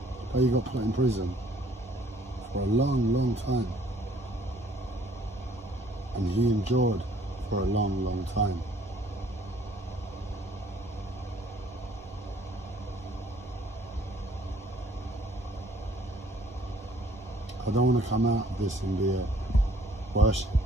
But he got put in prison for a long time. And he endured for a long time. I don't want to come out of this and be worshipped.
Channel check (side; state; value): both; normal; correlation 0.59